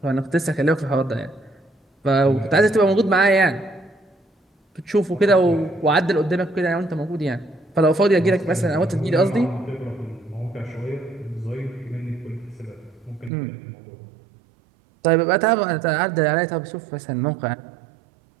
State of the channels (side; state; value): left; drops out; at 13.3 s